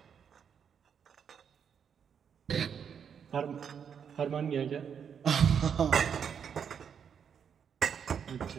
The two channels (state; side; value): quieter; left; 7.5 dB